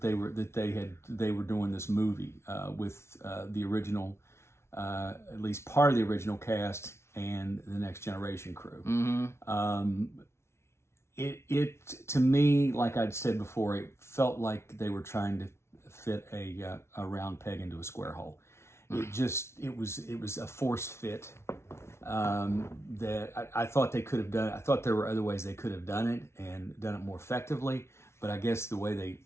they were doing this movie with the original, at least part of the original cast and the Next Generation crew. Mm-hmm. It to me, like I'd said before, it felt like they were trying to fit a round peg into a square hole. It was a force fit that I thought they could have done. I thought there were other ways they could have done it and done it more effectively. But I guess the way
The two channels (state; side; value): late; right; 0.13 ms